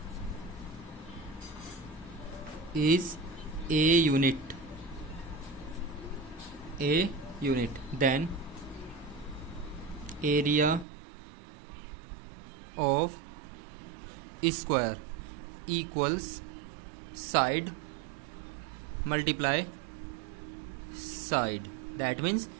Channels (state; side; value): drops out; left; at 10.9 s